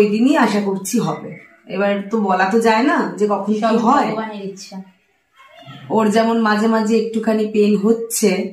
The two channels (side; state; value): both; identical; correlation 1.00